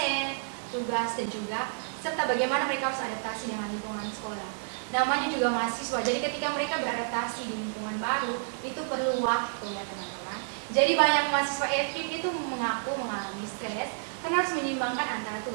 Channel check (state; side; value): silent; left; digital silence